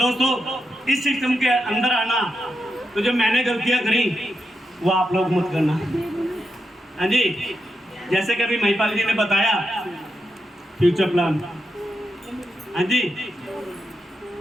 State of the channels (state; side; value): normal; both; correlation 0.85